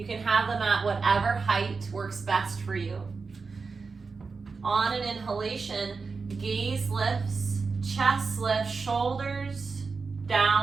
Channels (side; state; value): left; quieter; 4.6 dB